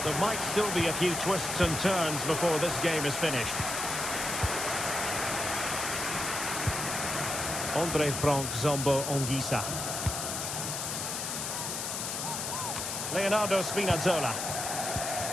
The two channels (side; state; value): left; noise; hiss, 3 dB below the sound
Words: there might still be a few twists and turns before this game is finished. Andre Frank Zombo Anguissa. Leonardo Spinazzola.